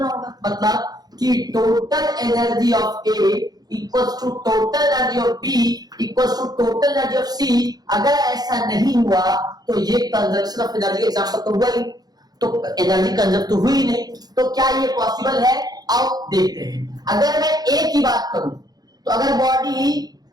होगा, मतलब कि total energy of A equals to total energy of B equals to total energy of C. अगर ऐसा नहीं हुआ तो ये कंजर्वेशन ऑफ एनर्जी एग्जांपल तो हुआ ही, तो एनर्जी कंजर्व तो हुई नहीं, तो क्या ये पॉसिबल है? आओ देखते हैं। अगर मैं ए की बात करूं तो अगर बॉडी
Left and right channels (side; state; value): left; late; 0.19 ms